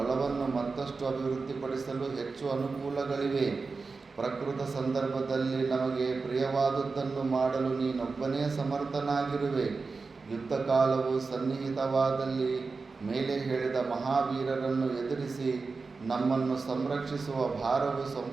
ಮತ್ತಷ್ಟು ಅಭಿವೃದ್ಧಿಪಡಿಸಲು ಹೆಚ್ಚು ಅನುಕೂಲಗಳಿವೆ. ಪ್ರಕೃತ ಸಂದರ್ಭದಲ್ಲಿ ನಮಗೆ ಪ್ರಿಯವಾದುದನ್ನು ಮಾಡಲು ನೀನೊಬ್ಬನೇ ಸಮರ್ಥನಾಗಿರುವೆ. ಯುದ್ಧ ಕಾಲವು ಸನ್ನಿಹಿತವಾದಲ್ಲಿ ಮೇಲೆ ಹೇಳಿದ ಮಹಾವೀರರನ್ನು ಎದುರಿಸಿ ನಮ್ಮನ್ನು ಸಂರಕ್ಷಿಸುವ ಭಾರವು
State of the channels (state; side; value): quieter; left; 4.3 dB